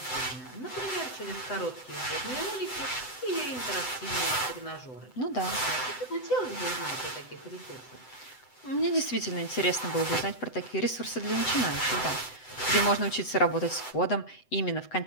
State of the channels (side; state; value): right; late; 7.9 ms